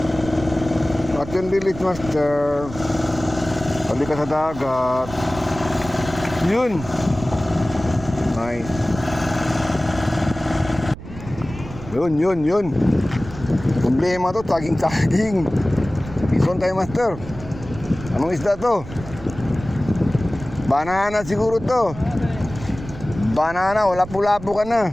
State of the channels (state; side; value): noise; right; rumble, 13 dB below the sound